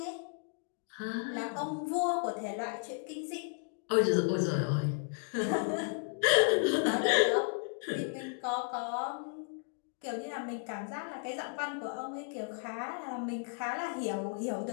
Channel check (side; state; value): right; silent; 55 dB below the other